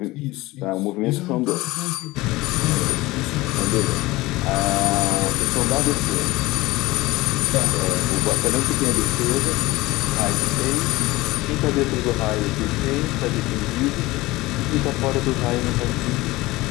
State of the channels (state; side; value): quieter; right; 19.8 dB